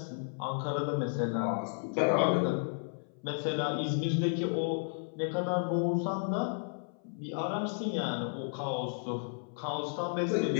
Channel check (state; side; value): silent; right; 56 dB below the other